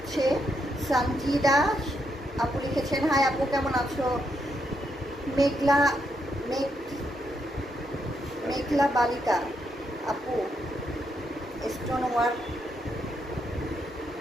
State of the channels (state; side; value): normal; both; correlation 0.79